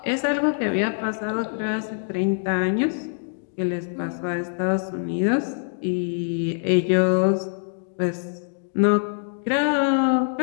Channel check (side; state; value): right; silent; digital silence